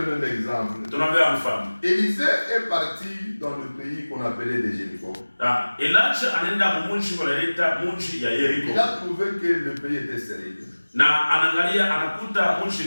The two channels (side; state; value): both; inverted; correlation -1.00